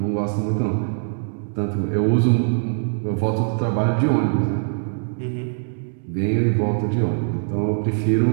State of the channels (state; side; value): silent; left; digital silence